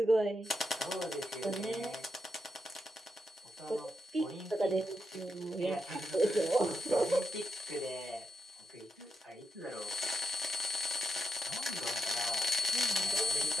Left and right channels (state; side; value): normal; both; correlation 0.83